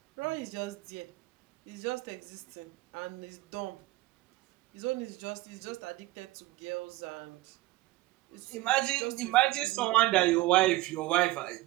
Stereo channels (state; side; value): quieter; left; 18.3 dB